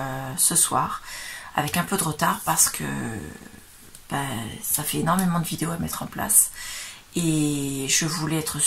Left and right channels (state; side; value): identical; both; correlation 1.00